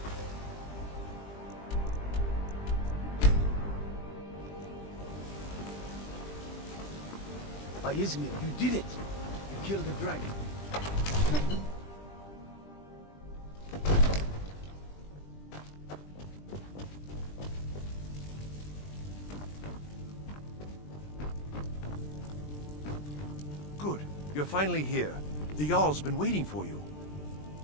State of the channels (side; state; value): right; late; 20 ms